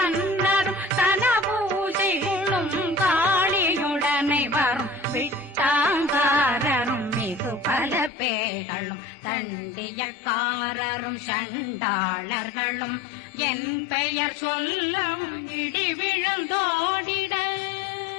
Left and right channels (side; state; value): right; drops out; at 8.1 s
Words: தனபூசைகளும் காளியுடனை வரும் விட்டாங்காரரும் மிகு பல பேர்களும் தண்டியக்காரரும் சண்டாளர்களும் என் பெயர் சொல்லவும் இடி விழுந்தோடிட